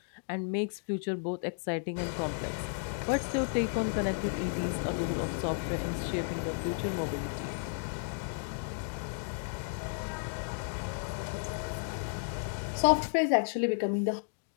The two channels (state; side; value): silent; right; digital silence